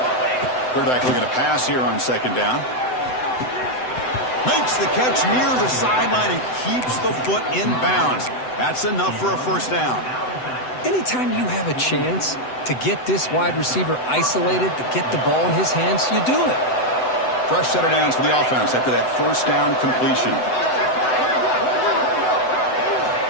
Quarterback looking to pass here on 2nd down. Makes the catch near the sideline and keeps the foot in bounds. That's enough for a 1st down. Anytime you have a chance to get this wide receiver isolated, to get the ball in his hands, you do it. Fresh set of downs for the offense after that 1st down completion.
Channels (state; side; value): late; right; 7.9 ms